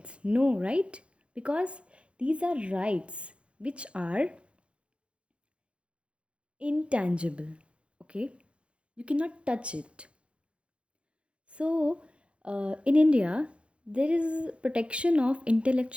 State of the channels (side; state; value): left; late; 0.059 ms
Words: No, right? Because these are rights which are intangible. Okay, you cannot touch it. So in India there is protection of